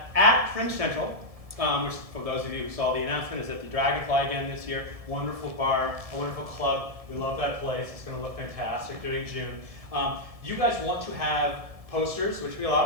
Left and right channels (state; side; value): late; left; 1.7 ms